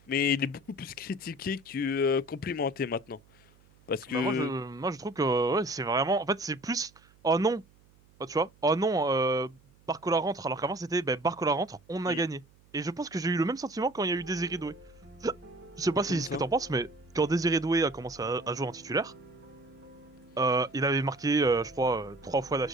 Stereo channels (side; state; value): right; noise; hum, 30 dB below the sound